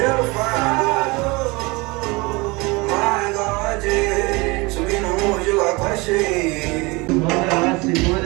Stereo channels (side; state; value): left; quieter; 25.2 dB